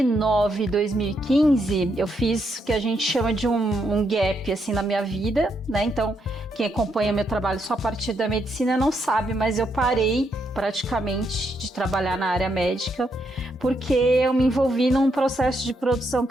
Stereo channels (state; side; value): normal; both; correlation 0.78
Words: e 2015, eu fiz o que a gente chama de um gap, assim, na minha vida, né? Então, quem acompanha meu trabalho só a partir da medicina não sabe, mas eu parei praticamente de trabalhar na área médica, porque eu me envolvi num processo de produção